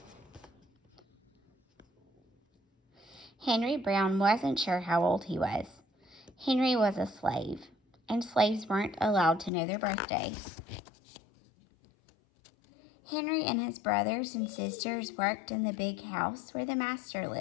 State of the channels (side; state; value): right; drops out; at 9.5 s